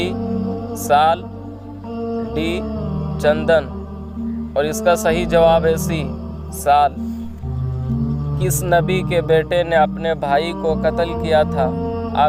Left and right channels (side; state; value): both; identical; correlation 1.00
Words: साल, डी चंदन। और इसका सही जवाब है सी साल। किस नबी के बेटे ने अपने भाई को कत्ल किया था?